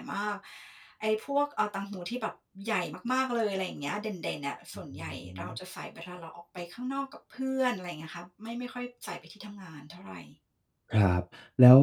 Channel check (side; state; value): both; identical; correlation 1.00